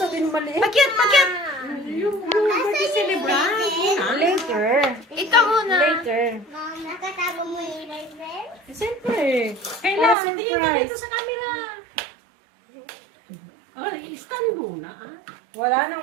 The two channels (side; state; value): left; drops out; at 10.2 s